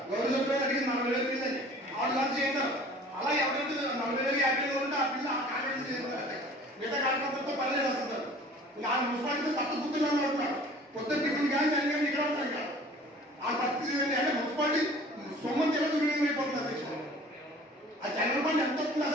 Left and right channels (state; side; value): normal; both; correlation 0.47